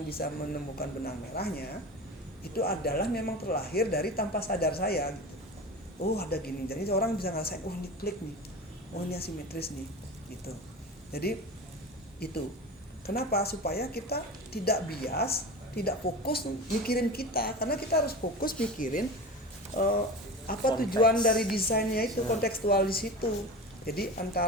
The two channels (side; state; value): both; normal; correlation 0.31